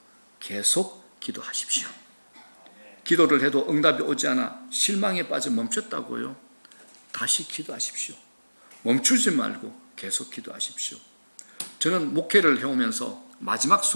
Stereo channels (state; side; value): inverted; both; correlation -1.00